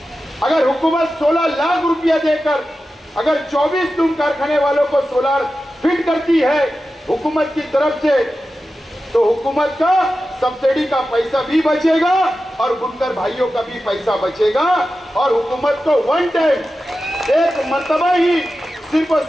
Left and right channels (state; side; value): normal; both; correlation 0.93